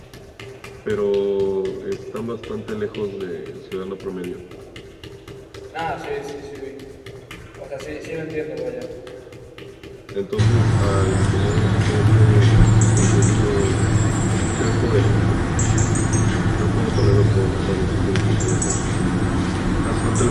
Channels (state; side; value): identical; both; correlation 1.00